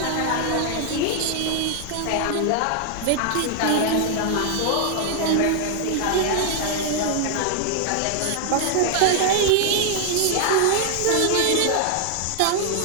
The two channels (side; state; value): both; different; correlation 0.00